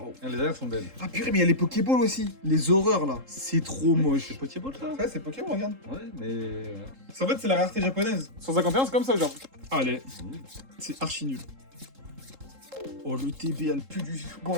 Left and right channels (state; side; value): late; left; 3.7 ms